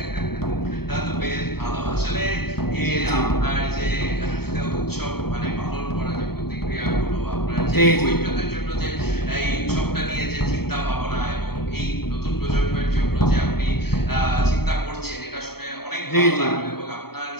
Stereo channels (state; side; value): late; right; 0.96 ms